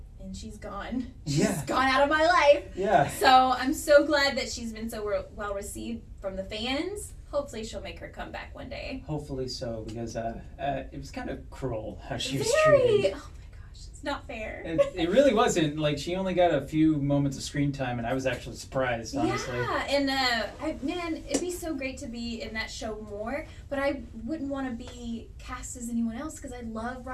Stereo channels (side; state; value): both; identical; correlation 1.00